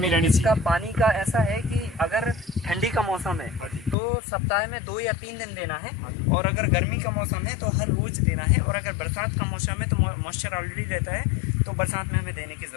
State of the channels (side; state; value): right; drops out; at 4.0 s